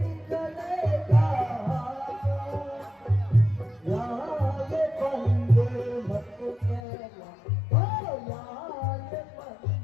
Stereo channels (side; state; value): right; drops out; at 6.8 s